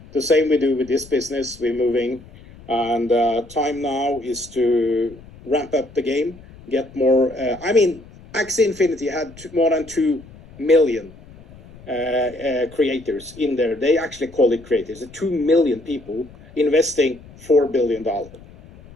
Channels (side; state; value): left; noise; rumble, 21 dB below the sound